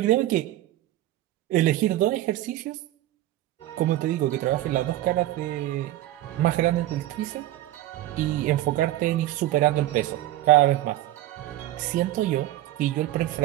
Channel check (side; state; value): left; quieter; 14.8 dB